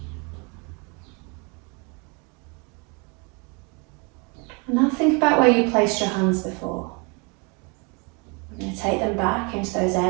And now think about where you placed your hands before. We're going to take them back into those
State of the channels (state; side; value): quieter; left; 32.0 dB